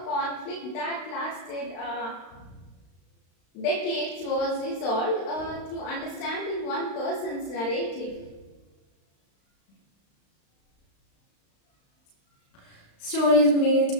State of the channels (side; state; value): right; late; 35 ms